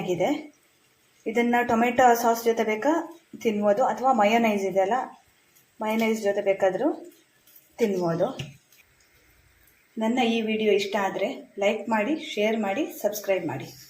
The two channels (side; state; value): both; identical; correlation 1.00